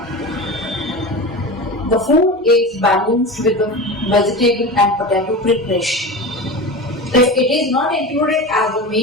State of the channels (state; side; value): normal; both; correlation 0.28